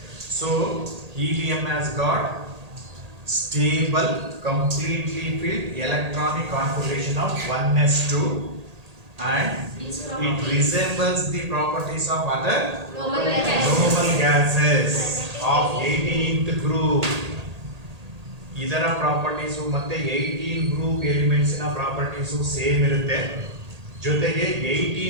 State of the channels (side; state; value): left; late; 1.8 ms